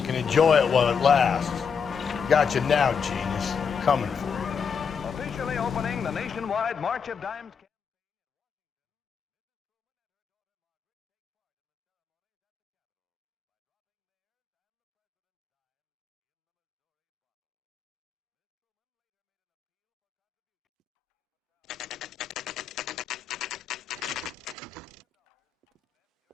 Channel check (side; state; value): right; quieter; 6.4 dB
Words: can enjoy it while it lasts. Got you now, genius. I'm coming for you. Officially opening the nationwide March of Dimes campaign.